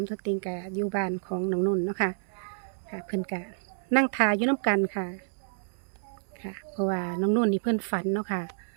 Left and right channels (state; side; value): silent; left; 58 dB below the other